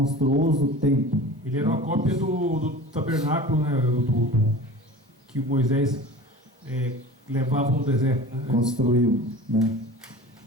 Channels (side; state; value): both; normal; correlation 0.37